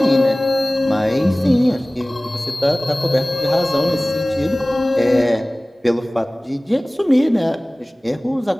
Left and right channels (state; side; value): normal; both; correlation 0.98